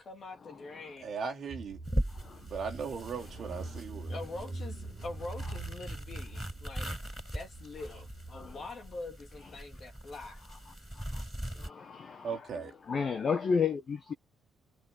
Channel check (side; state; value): both; normal; correlation 0.82